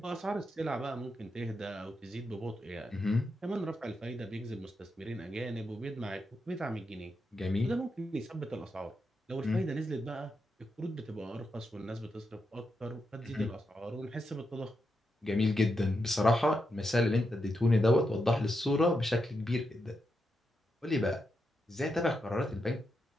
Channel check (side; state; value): both; normal; correlation 0.85